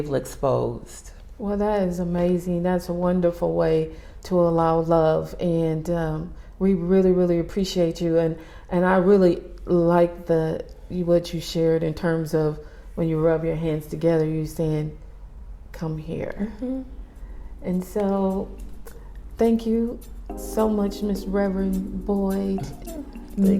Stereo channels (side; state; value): both; identical; correlation 1.00